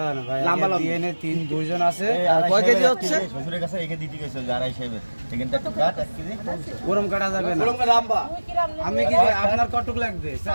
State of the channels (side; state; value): both; inverted; correlation -1.00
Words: লম্বা ডিএনএ 2 জন আছে। আর কয় কেজি হচ্ছে? শ্বশুরের কাছে রেখে দিতে গেছে যারা হিসেবে এখানটা একটু কাট 1 কেজি ওরম কাটা যাবে না। আমি কি আপনার কতটুকু লাগবে?